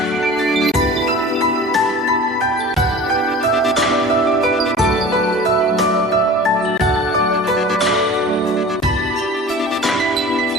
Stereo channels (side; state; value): both; normal; correlation 0.41